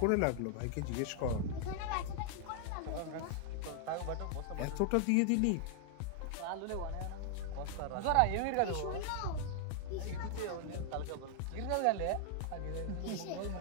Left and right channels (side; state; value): both; different; correlation 0.00